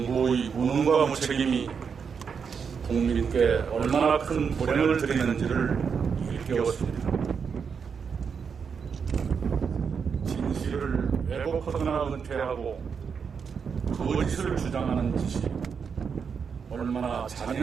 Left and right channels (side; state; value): left; quieter; 6.3 dB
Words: 무능과 무책임이 국민께 얼마나 큰 불행을 드리는지를 일깨웠습니다. 진실을 왜곡하거나 은폐하고 거짓을 주장하는 짓이 얼마나